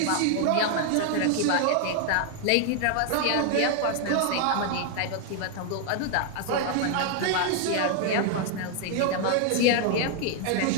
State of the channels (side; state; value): both; different; correlation 0.00